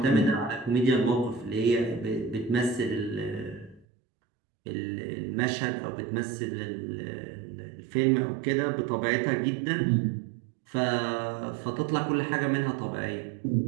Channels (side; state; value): left; drops out; at 3.9 s